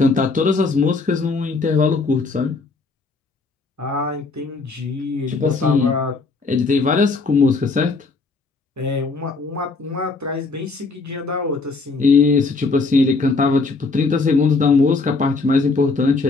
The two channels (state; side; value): quieter; right; 3.9 dB